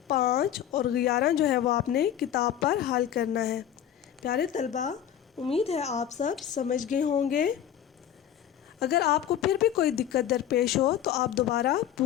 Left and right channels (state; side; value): quieter; right; 10.3 dB